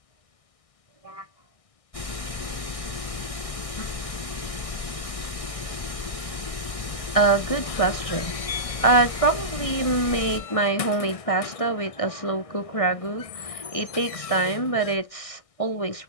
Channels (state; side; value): late; right; 1.6 ms